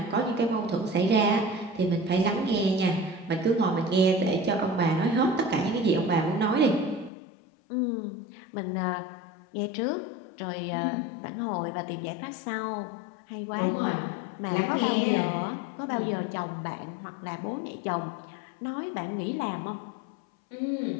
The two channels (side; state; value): right; drops out; at 7.1 s